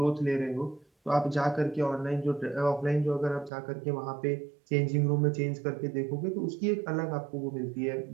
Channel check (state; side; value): drops out; left; at 3.5 s